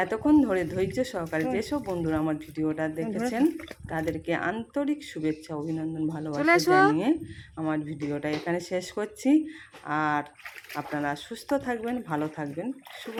এতক্ষণ ধরে ধৈর্য সহকারে যেসব বন্ধুরা আমার ভিডিওটা দেখেছেন তাদেরকে আন্তরিক শুভেচ্ছা অভিনন্দন ভালোবাসা জানিয়ে আমার ভিডিওটা এখানে শেষ করছি আর আপনারা সুস্থ থাকবেন ভালো থাকবেন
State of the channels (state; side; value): identical; both; correlation 1.00